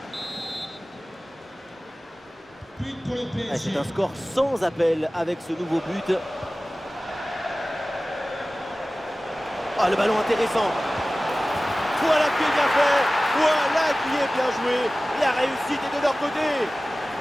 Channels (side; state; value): both; normal; correlation 0.97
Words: Ah, c'est un score sans appel avec ce nouveau but. Ah, le ballon intéressant. Voilà qui est bien fait. Voilà qui est bien joué. La réussite est de leur côté.